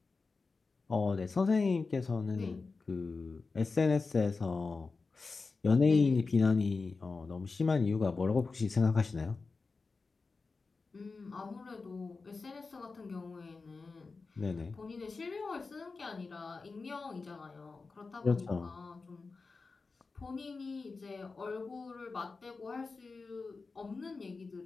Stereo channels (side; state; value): right; quieter; 4.2 dB